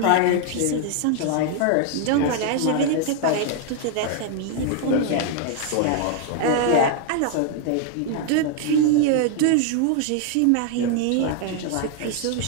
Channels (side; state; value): both; different; correlation 0.00